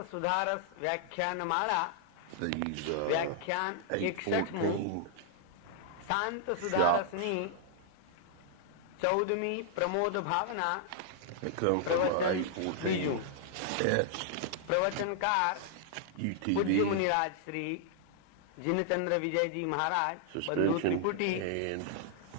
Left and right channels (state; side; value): different; both; correlation -0.01